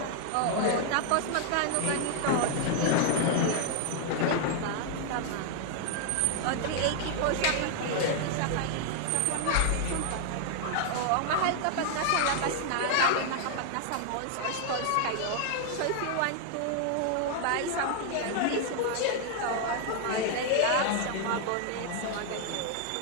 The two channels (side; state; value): both; different; correlation 0.00